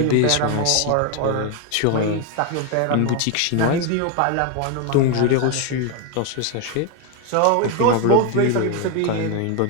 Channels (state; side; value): different; both; correlation 0.01